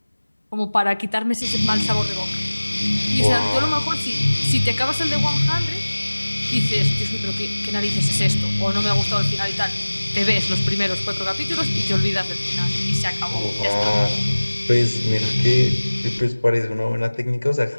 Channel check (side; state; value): both; inverted; correlation -1.00